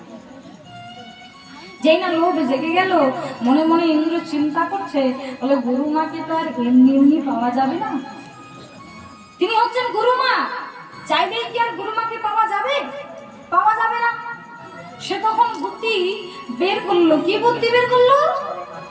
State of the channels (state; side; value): identical; both; correlation 1.00